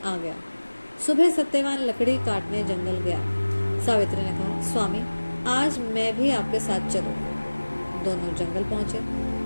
आ गया। सुबह सत्यवान लकड़ी काटने जंगल गया। सावित्री ने कहा, स्वामी, आज मैं भी आपके साथ चलूंगी। दोनों जंगल पहुंचे।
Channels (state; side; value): inverted; both; correlation -1.00